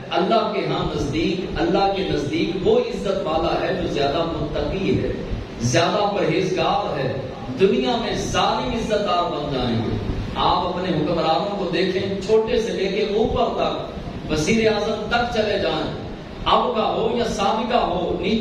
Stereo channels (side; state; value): both; identical; correlation 1.00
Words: اللہ کے ہاں نزدیک، اللہ کے نزدیک وہ عزت والا ہے جو زیادہ متقی ہے، زیادہ پرہیزگار ہے. دنیا میں ظالم عزت دار بن جائیں گے. آپ اپنے حکمرانوں کو دیکھیں، چھوٹے سے لے کے اوپر تک، وزیر اعظم تک چلے جائیں، اب کا ہو یا سابقہ ہو،